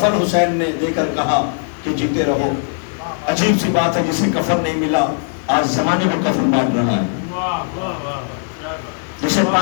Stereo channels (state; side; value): silent; right; digital silence